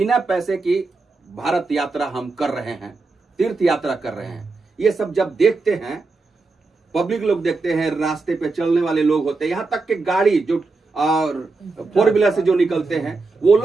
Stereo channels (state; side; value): quieter; left; 3.7 dB